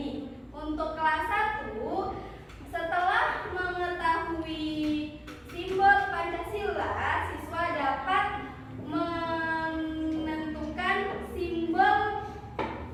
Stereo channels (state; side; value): identical; both; correlation 1.00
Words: Untuk kelas 1, setelah mengetahui simbol Pancasila, siswa dapat menentukan simbol